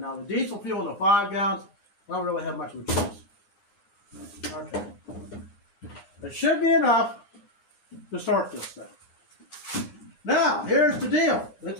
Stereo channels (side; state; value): right; late; 9.9 ms